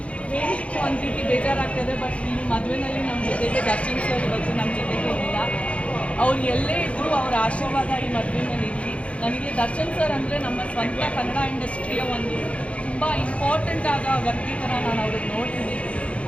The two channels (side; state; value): right; late; 0.062 ms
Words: ಹೇಳಲಿಕ್ಕೆ ಒಂದು ರೀತಿ ಬೇಜಾರಾಗ್ತದೆ, ಬಟ್ ಈ ಮದುವೆನಲ್ಲಿ ನಮ್ಮ ಜೊತೆಗೆ ದರ್ಶನ್ ಸರ್ ಇವತ್ತು ನಮ್ಮ ಜೊತೆಗೆ ಇಲ್ಲ. ಅವ್ರು ಎಲ್ಲೇ ಇದ್ದರೂ ಅವರ ಆಶೀರ್ವಾದ ಈ ಮದುವೆನಲ್ಲಿ ಇರಲಿ. ನನಗೆ ದರ್ಶನ್ ಸರ್ ಅಂದರೆ ನಮ್ಮ ಸ್ವಂತ ಕನ್ನಡ ಇಂಡಸ್ಟ್ರಿಯ ಒಂದು ತುಂಬ ಇಂಪಾರ್ಟೆಂಟ್ ಆದ ವ್ಯಕ್ತಿ ಥರ ನಾನು ಅವ್ರಿಗೆ ನೋಡ್ತೀನಿ.